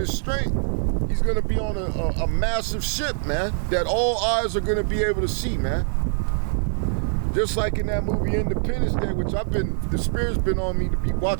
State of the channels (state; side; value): silent; left; digital silence